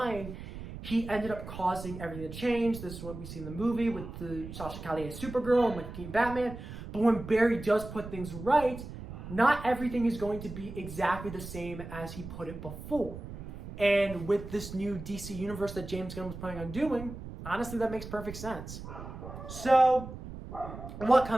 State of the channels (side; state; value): right; noise; rumble, 11 dB below the sound